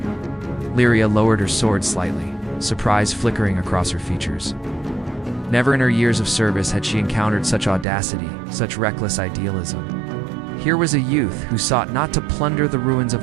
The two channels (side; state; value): left; drops out; at 7.9 s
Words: Lyria lowered her sword slightly, surprise flickering across her features. Never in her years of service had she encountered such audacity, such reckless idealism. Here was a youth who sought not to plunder the ruins